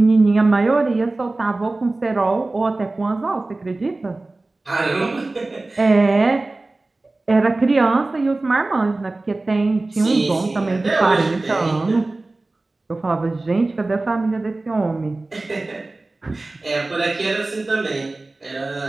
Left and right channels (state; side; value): quieter; left; 3.1 dB